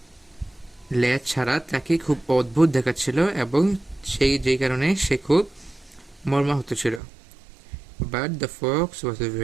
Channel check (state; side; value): drops out; left; at 7.0 s